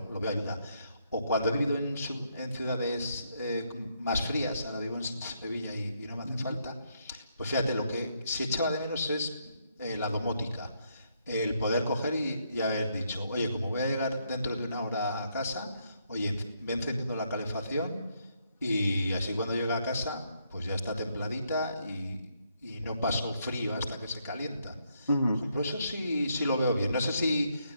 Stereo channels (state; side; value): inverted; both; correlation -0.75